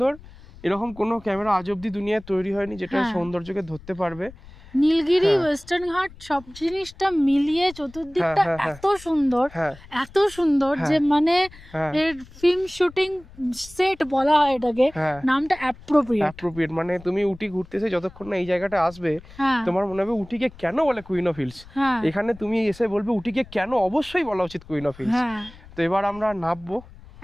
এরকম কোনো ক্যামেরা আজ অব্দি দুনিয়ায় তৈরি হয়নি যেটা সৌন্দর্যকে ধরতে পারবে। নীলগিরি, ওয়েস্টার্ন ঘাট সব জিনিসটা মিলিয়ে চতুর্দিকটা এত সুন্দর, এত সুন্দর যে মানে এর ফিল্ম শুটিং সেট বলা হয় এটাকে, নামটা অ্যাপ্রোপ্রিয়েট। মানে তুমি উটি ঘুরতেছে যতক্ষণ না এই জায়গাটা আসবে, তোমার মনে হবে উটিকে কেন বলে কুইন অফ হিলস। এখানে তুমি এসে বলবে উটিকে কেন অবশ্যই বলা উচিত কুইন অফ হিলস। তো এবার আমরা নামবো,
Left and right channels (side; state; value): left; noise; rumble, 20 dB below the sound